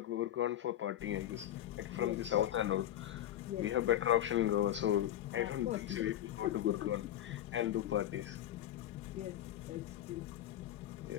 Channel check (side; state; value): right; quieter; 12.0 dB